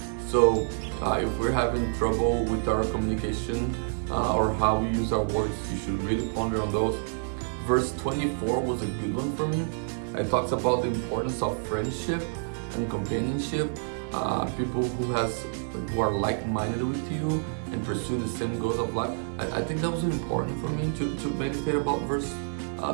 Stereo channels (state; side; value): silent; left; digital silence